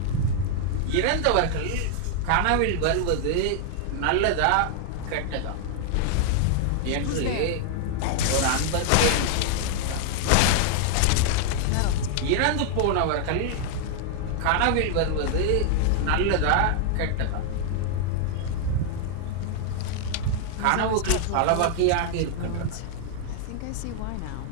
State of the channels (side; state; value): both; different; correlation 0.00